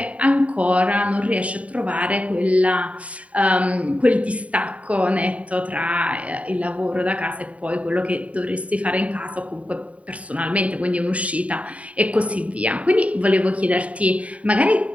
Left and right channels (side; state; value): left; late; 0.066 ms